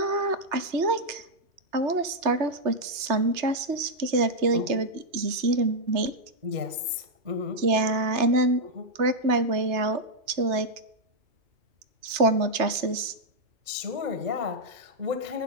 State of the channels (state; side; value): late; left; 3.3 ms